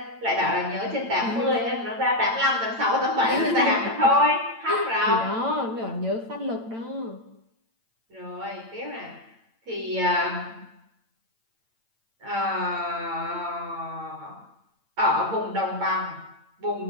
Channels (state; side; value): late; left; 8.8 ms